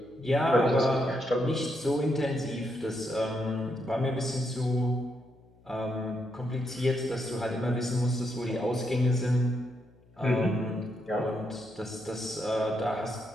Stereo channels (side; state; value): left; noise; hum, 28 dB below the sound